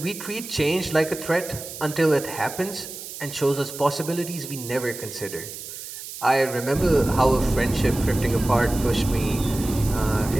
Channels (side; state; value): right; noise; hiss, 11 dB below the sound